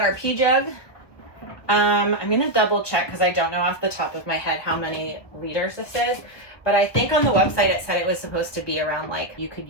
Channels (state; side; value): late; right; 1.4 ms